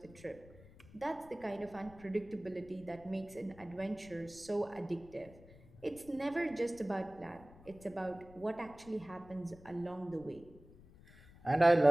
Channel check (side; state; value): left; noise; rumble, 21 dB below the sound